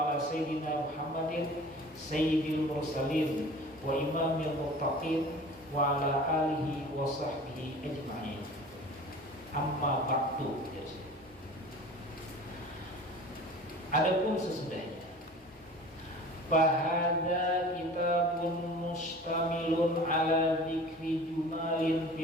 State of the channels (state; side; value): normal; both; correlation 0.42